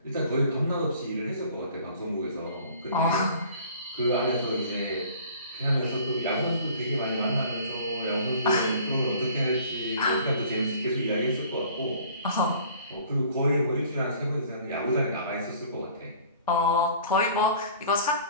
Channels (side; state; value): both; inverted; correlation -0.50